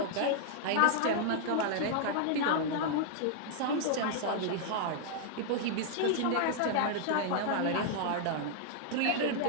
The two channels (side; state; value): both; different; correlation -0.01